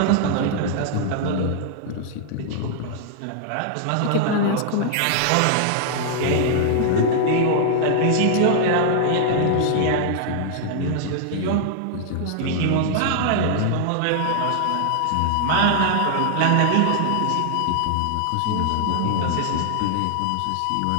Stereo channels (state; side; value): different; both; correlation -0.01